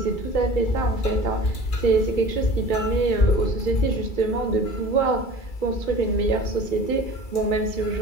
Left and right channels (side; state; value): right; late; 2.3 ms